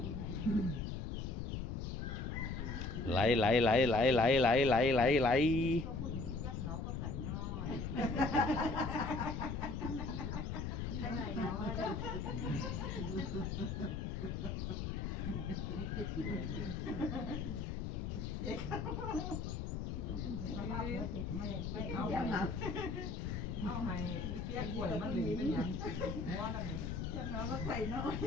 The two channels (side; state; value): left; noise; rumble, 3 dB below the sound